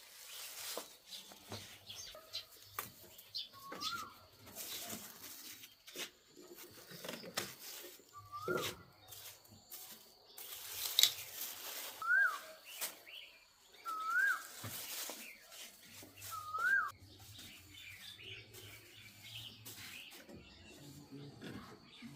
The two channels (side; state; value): both; identical; correlation 1.00